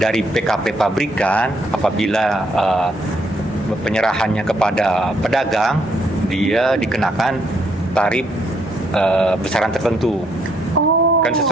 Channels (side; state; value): both; normal; correlation 0.72